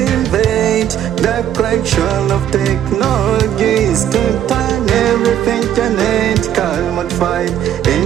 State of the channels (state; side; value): quieter; left; 10.6 dB